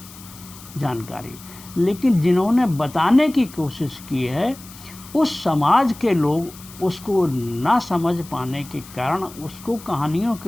जानकारी, लेकिन जिन्होंने बताने की कोशिश की है उस समाज के लोग उसको ना समझ पाने के कारण उसको कहानियों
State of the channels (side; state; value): left; noise; hiss, 19 dB below the sound